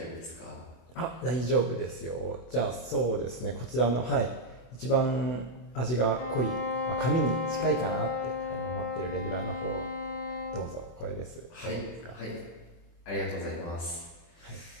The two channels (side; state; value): right; late; 24 ms